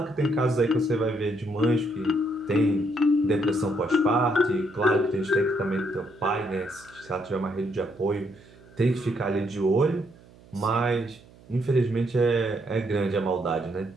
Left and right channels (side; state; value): right; noise; hum, 24 dB below the sound